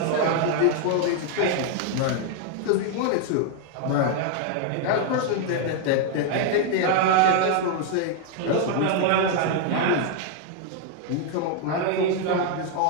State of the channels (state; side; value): different; both; correlation 0.00